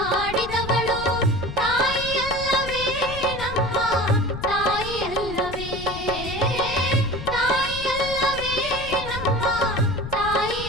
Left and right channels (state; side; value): noise; left; rumble, 10 dB below the sound